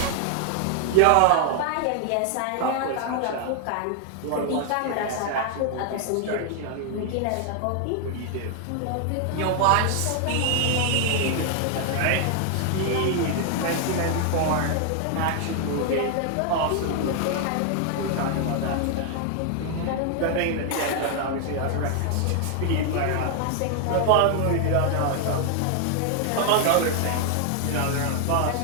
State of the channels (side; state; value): both; different; correlation 0.00